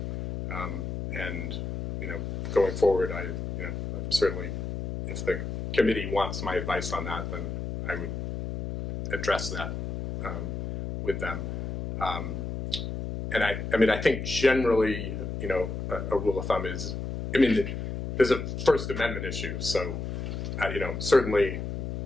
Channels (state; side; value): noise; left; hum, 5 dB below the sound